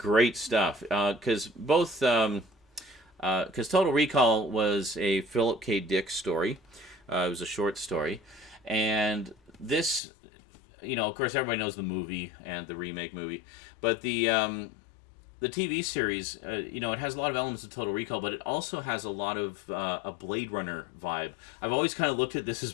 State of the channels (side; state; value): right; drops out; at 10.0 s